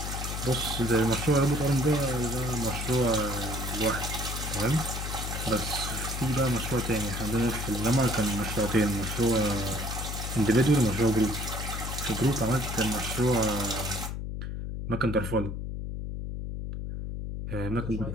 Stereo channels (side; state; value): left; noise; hum, 5 dB below the sound